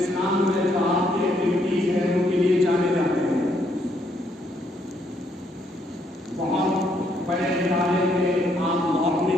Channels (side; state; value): both; normal; correlation 0.72